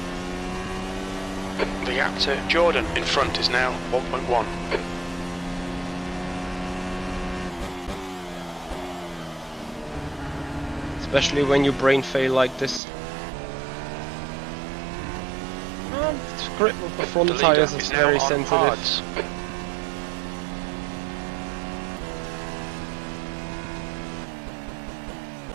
The gap to Jordan in front is now 1.1. Especially when you brain fail like this. The grip of the front The leader tires is now very on sensitive. hards.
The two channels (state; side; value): drops out; left; at 12.8 s